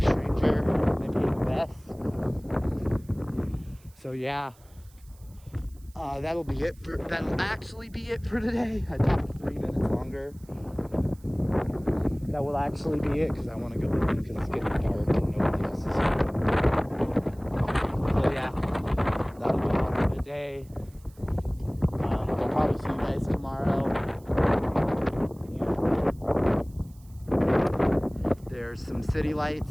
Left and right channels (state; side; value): noise; right; hiss, 28 dB below the sound